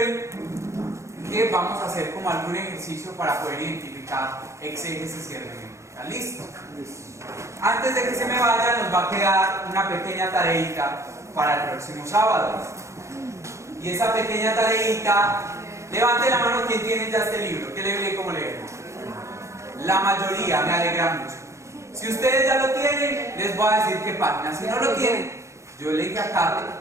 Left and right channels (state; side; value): late; left; 0.14 ms